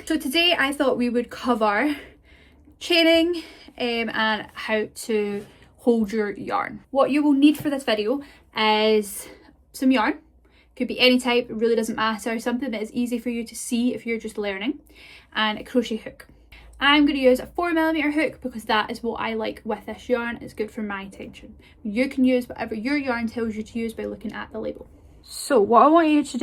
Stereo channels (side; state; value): both; identical; correlation 1.00